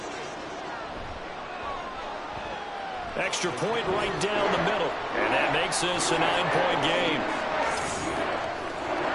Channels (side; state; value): both; identical; correlation 1.00